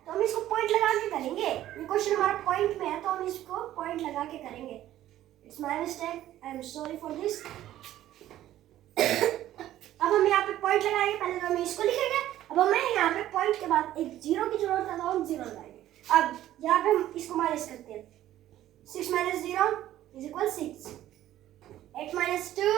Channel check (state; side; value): quieter; left; 13.3 dB